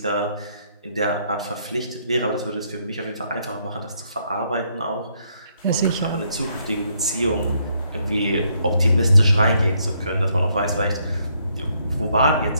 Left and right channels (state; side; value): inverted; both; correlation -0.73